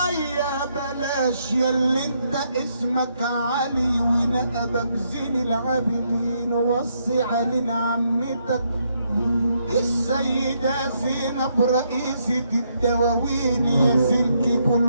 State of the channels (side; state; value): both; inverted; correlation -0.76